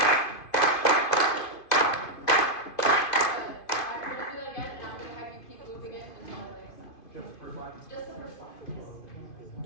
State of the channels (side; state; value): right; late; 2.5 ms